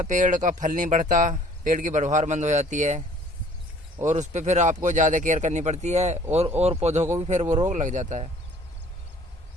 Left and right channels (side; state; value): both; normal; correlation 0.54